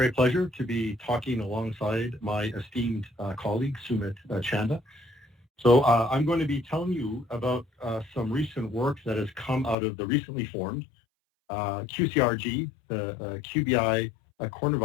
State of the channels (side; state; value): right; drops out; at 9.8 s